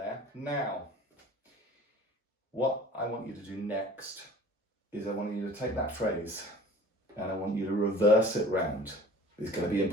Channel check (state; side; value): normal; both; correlation 0.45